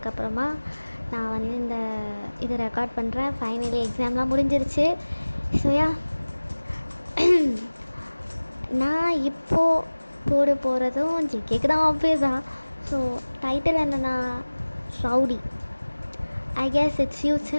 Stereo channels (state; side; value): inverted; both; correlation -1.00